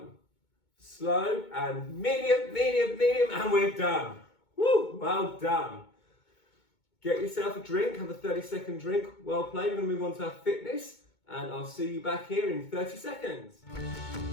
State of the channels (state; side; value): late; right; 2.2 ms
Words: slow. And medium, medium, medium. And we're done. Woo! Well done. Get yourself a drink. Have a 30-second drink. Well played. We're going to move on to our fitness. And I'll see you back here in 30 seconds.